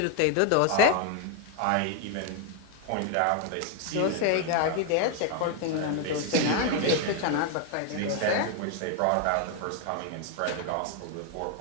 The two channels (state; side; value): different; both; correlation 0.01